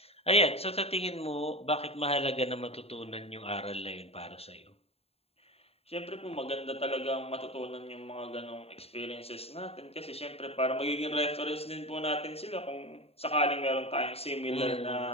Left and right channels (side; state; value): right; late; 0.29 ms